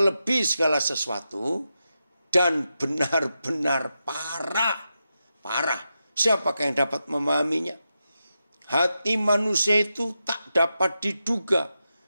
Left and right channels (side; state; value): both; inverted; correlation -0.88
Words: segala sesuatu dan benar-benar parah. Parah. Siapakah yang dapat memahaminya? Hati manusia itu tak dapat diduga,